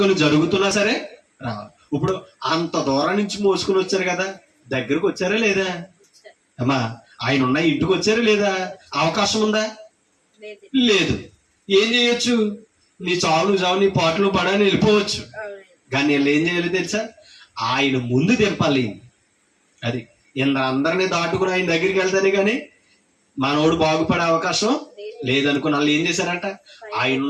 జరుగుతున్నా సరే రావాలి. ఇప్పుడు అంత దూరం నుంచి మోసుకుని వచ్చారు కదా, దగ్గరకు వచ్చారా లేదా? అమ్మా, ఆయన ఉన్న ఇంటికి వచ్చారా లేదా? అవకాశం ఉందా? లేదు. ఏం చేయొచ్చు? నీ చావులు చావు, నీ పాటలు పడని వెళ్ళిపోవచ్చు. కానీ వీళ్ళు ఏం చేయాలి తెలుసా? ఆయన ముందు దింపాలి. అది అందరినీ దాటుకుని ఆయన దగ్గరికి వెళ్తానే కానీ మనోడు బాగుపడే అవకాశం లేదనుకుని వాళ్ళు ఏం చేశారంట, ఆయన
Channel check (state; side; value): identical; both; correlation 1.00